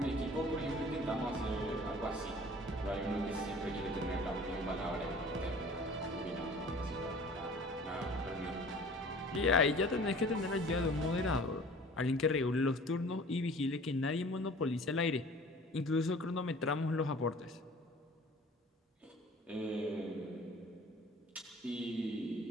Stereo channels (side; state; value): both; normal; correlation 0.46